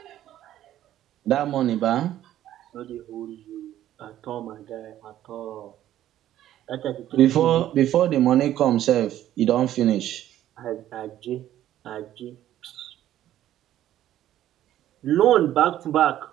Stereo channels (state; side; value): quieter; left; 12.5 dB